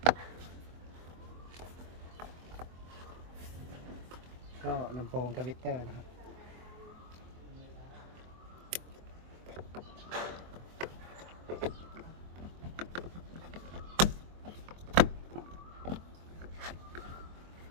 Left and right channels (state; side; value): late; left; 23 ms